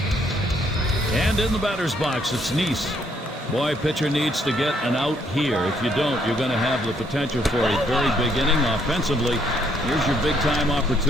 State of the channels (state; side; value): normal; both; correlation 0.69